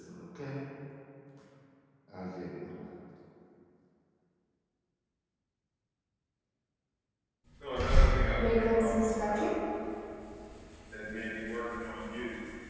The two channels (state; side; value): identical; both; correlation 1.00